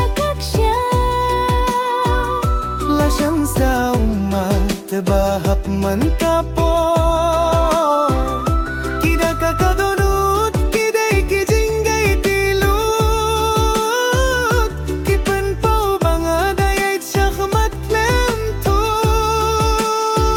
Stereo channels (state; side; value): identical; both; correlation 1.00